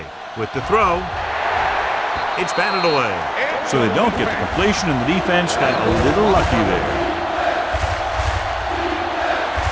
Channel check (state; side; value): identical; both; correlation 1.00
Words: With the throw, it's batted away. So they don't get the completion, and the defense got a little lucky there.